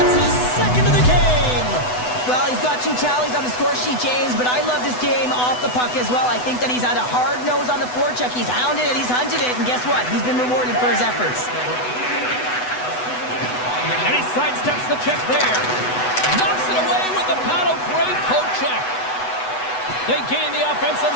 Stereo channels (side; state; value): right; late; 8.0 ms